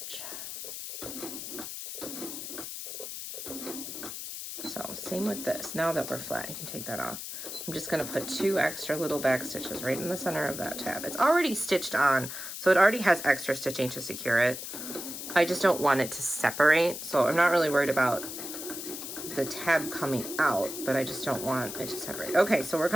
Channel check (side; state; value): left; noise; hiss, 8 dB below the sound